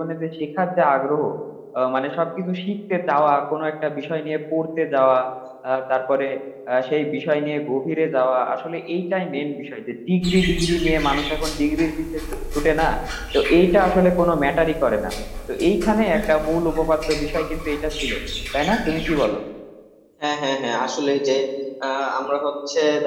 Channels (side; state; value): both; identical; correlation 1.00